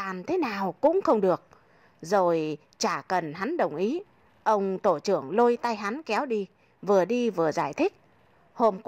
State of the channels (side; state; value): both; identical; correlation 1.00